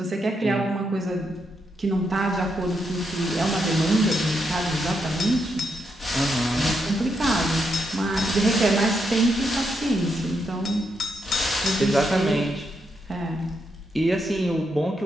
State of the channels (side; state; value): both; normal; correlation 0.81